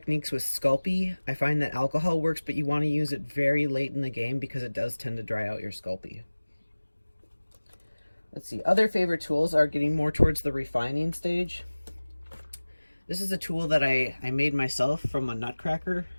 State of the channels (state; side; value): inverted; both; correlation -1.00